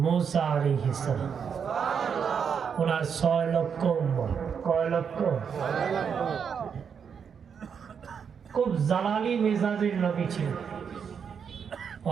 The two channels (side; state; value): left; quieter; 6.9 dB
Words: মুসা আলাইহিস সালাম। ওনার 6 লক্ষ উম্মত। কয় লক্ষ? খুব জালালি মেজাজের নবী ছিল।